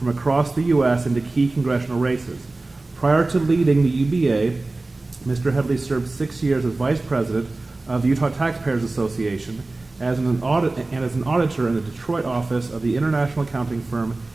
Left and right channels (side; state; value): left; quieter; 3.2 dB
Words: across the U.S. into key congressional races. Prior to leading the UBA, Mr. Headley served 6 years as Vice President of the Utah Taxpayers Association as an auditor in the Detroit office of the international accounting firm